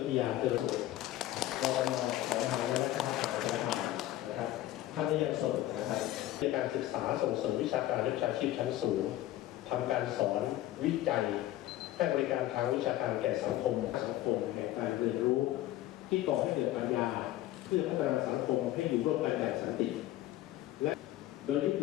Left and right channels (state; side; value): quieter; right; 14.6 dB